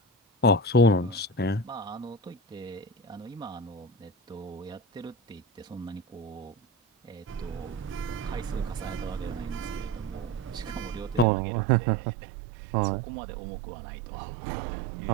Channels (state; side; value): drops out; left; at 11.2 s